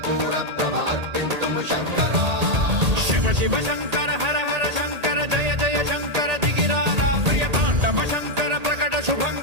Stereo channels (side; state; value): left; late; 1.8 ms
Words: ప్రభ అర్పింతుము శంకరా శివ శివ శంకర హర హర శంకర జయ జయ శంకర దిగిరారా ప్రియ తాండవ శంకర ప్రకట